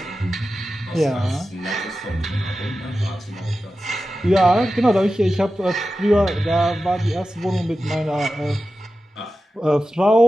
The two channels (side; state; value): both; normal; correlation 0.93